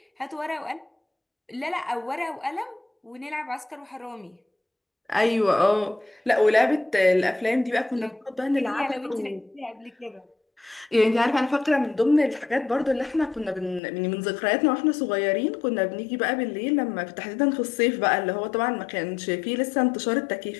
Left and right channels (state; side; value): drops out; right; at 13.8 s